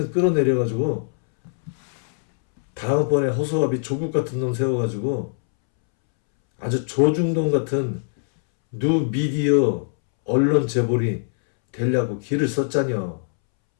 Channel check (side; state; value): right; silent; 64 dB below the other